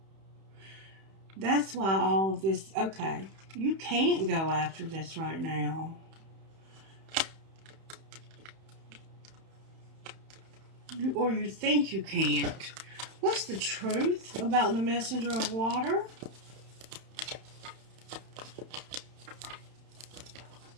That's why all of this, okay, you can't go after this right now. Or you think you can't. What's the truth about the messenger of water?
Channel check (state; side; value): late; left; 31 ms